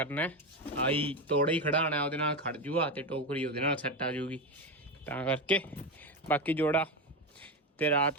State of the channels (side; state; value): both; normal; correlation 0.15